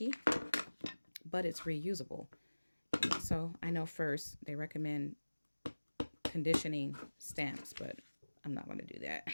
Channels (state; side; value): inverted; both; correlation -1.00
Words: but it's reusable. So I know first they recommend conditioning stamps, but I'm not going to do that.